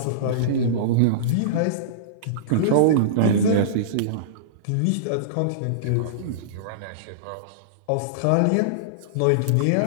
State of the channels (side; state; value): both; different; correlation -0.03